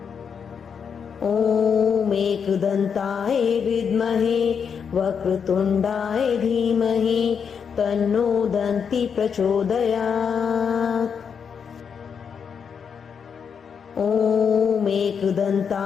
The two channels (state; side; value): quieter; right; 6.7 dB